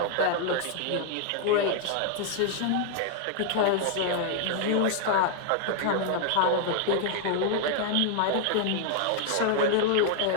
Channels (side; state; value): both; different; correlation 0.00